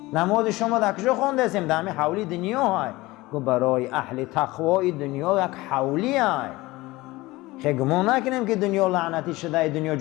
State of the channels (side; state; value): right; quieter; 20.2 dB